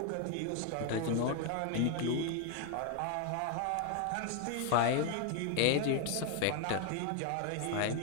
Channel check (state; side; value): different; both; correlation 0.01